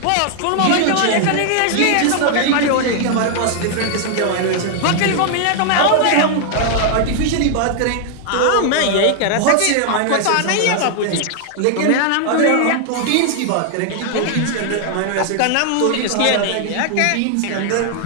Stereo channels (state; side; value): different; both; correlation 0.00